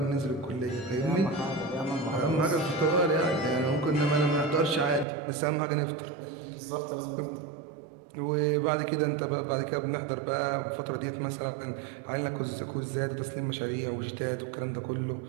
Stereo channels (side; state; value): left; drops out; at 5.1 s